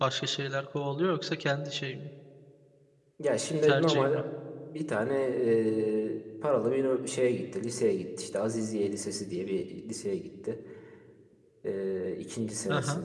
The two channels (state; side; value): identical; both; correlation 1.00